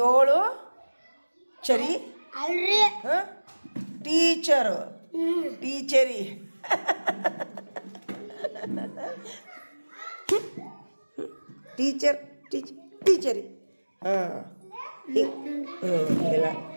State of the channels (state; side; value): inverted; both; correlation -1.00